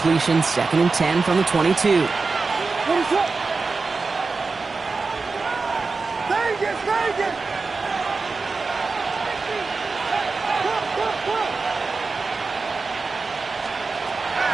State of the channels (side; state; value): left; quieter; 4.2 dB